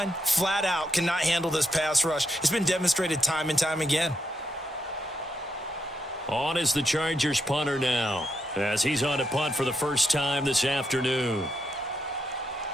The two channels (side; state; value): both; normal; correlation 0.81